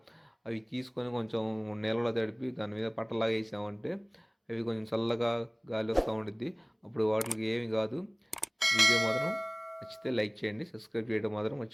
అవి తీసుకొని కొంచెం నీళ్ళలో తడిపి దాని మీద పట్టలాగా వేసామంటే అవి కొంచెం చల్లగా గాలి వస్తూ ఉంటుంది. అప్పుడు వాటికి ఏమి కాదు. వీడియో మాత్రం నచ్చితే లైక్ చేయండి, సబ్స్క్రైబ్ చేయడం మాత్రం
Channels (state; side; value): identical; both; correlation 1.00